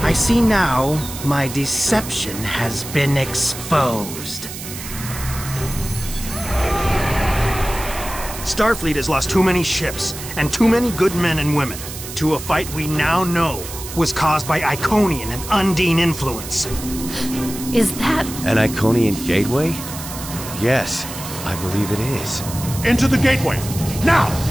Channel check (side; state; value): right; noise; hiss, 10 dB below the sound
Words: I see now my deception has been exposed. Starfleet has lost too many ships, and too many good men and women, to a fight we now know was caused by Iconian and Undine influence. Is that... an Iconian gateway? Yes, I believe it is. Into the gateway, now!